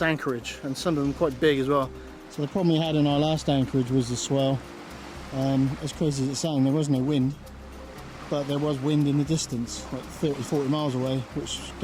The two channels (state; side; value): identical; both; correlation 1.00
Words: anchorage, and some of them quite big as well. So the problem we had in our last anchorage was the swell. As crazy as it sounds, there was no wind, but there was wind in the distance, like 30-40 miles away, which